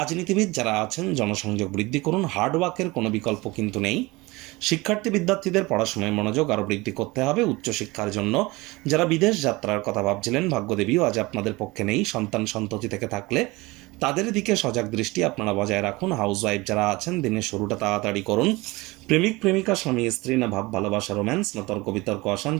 যারা আছেন, জনসংযোগ বৃদ্ধি করুন, হার্ডওয়ার্কের কোনো বিকল্প কিন্তু নেই। শিক্ষার্থী বিদ্যার্থীদের পড়াশোনায় মনোযোগ আরও বৃদ্ধি করতে হবে। উচ্চশিক্ষার জন্য যারা বিদেশ যাত্রার কথা ভাবছিলেন, ভাগ্যদেবীও আজ আপনাদের পক্ষে নেই। সন্তান সন্ততি থেকে থাকলে তাদের দিকে সজাগ দৃষ্টি আপনারা বজায় রাখুন। হাউসওয়াইফ যারা আছেন, দিনের শুরুটা তাড়াতাড়ি করুন। প্রেমিক প্রেমিকা, স্বামী স্ত্রী, না ভাব ভালোবাসা, রোম্যান্স, না তর্ক বিতর্ক,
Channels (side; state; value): left; quieter; 22.5 dB